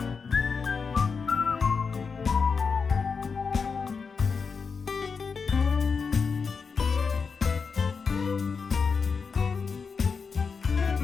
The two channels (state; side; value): quieter; right; 5.3 dB